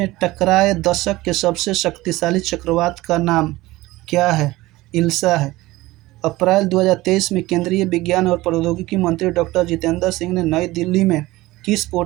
टकराए दशक के सबसे शक्तिशाली चक्रवात का नाम क्या है? इल्सा है। अप्रैल 2023 में केंद्रीय विज्ञान और प्रौद्योगिकी मंत्री डॉक्टर जितेंद्र सिंह ने नई दिल्ली में किस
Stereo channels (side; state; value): left; quieter; 18.8 dB